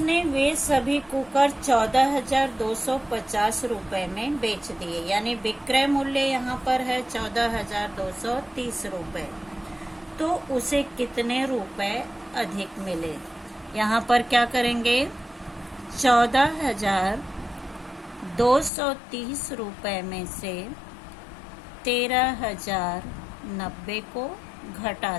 वे सभी कुकर 14,250 रुपए में बेच दिए, यानी विक्रय मूल्य यहाँ पर है 14,230 रुपए। तो उसे कितने रुपए अधिक मिले? यहाँ पर क्या करेंगे, 14,230 रुपए में से 13,090 को घटा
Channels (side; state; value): right; drops out; at 18.7 s